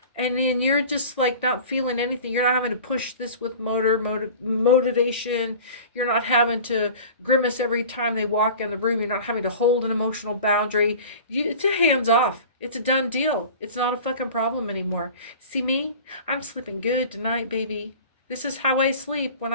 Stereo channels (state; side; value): inverted; both; correlation -0.40